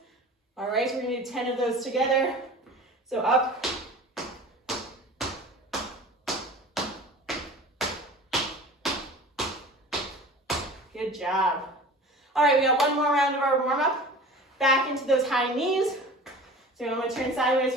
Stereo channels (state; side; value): normal; both; correlation 0.40